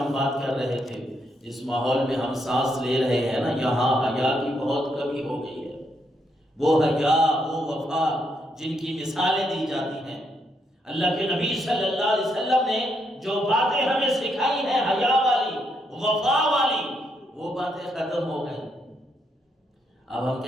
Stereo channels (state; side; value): normal; both; correlation 0.77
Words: بات کر رہے تھے، جس ماحول میں ہم سانس لے رہے ہیں نا، یہاں حیا کی بہت کمی ہو گئی ہے۔ وہ حیا، وہ وفا جن کی مثالیں دی جاتی ہیں، اللہ کے نبی صلی اللہ علیہ وسلم نے جو باتیں ہمیں سکھائی ہیں حیا والی، وفا والی، وہ باتیں ختم ہو گئی۔ اب ہم